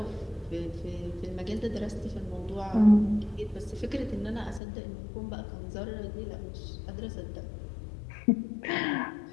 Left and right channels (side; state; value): right; drops out; at 4.6 s